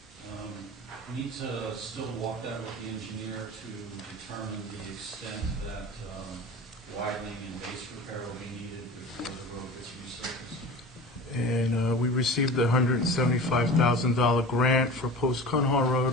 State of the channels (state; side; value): normal; both; correlation 0.35